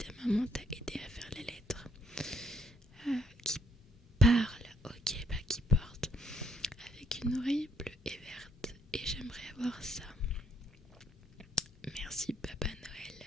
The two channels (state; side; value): normal; both; correlation 0.70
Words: maman t'a aidé à faire les lettres. Qui parle, ok, bah qui porte avec une oreille bleue et verte. Et j'aimerais avoir ça. Merci Papa Noël.